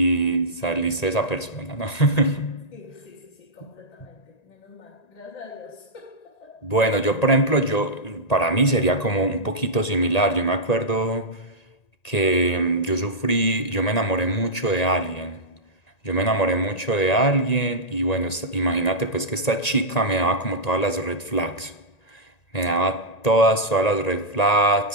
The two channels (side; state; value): right; late; 1.9 ms